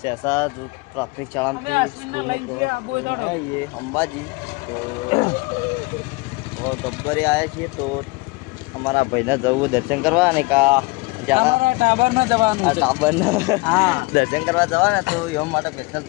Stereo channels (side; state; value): right; quieter; 25.9 dB